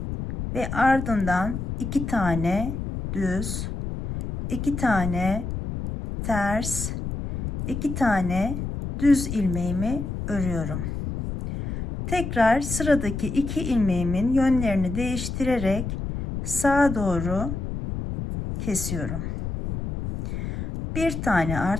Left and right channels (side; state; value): left; noise; rumble, 5 dB below the sound